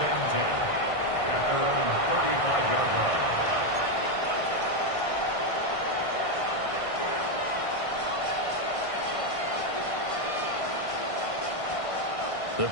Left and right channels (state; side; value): late; right; 1.6 ms